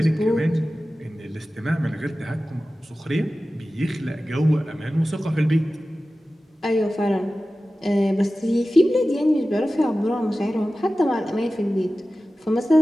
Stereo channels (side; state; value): both; normal; correlation 0.95